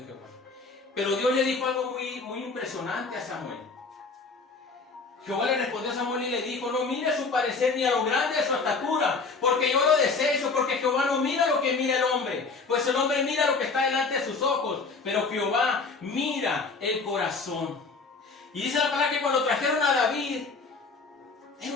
Jehová. Pero Dios le dijo algo muy impresionante a Samuel. Jehová le respondió a Samuel y le dijo, no mire su parecer ni a lo grande de su estatura, porque yo lo desecho, porque Jehová no mira lo que mira el hombre, pues el hombre mira lo que está delante de sus ojos, pero Jehová mira el corazón. Y dice la palabra que cuando trajeron a David,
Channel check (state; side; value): quieter; right; 4.3 dB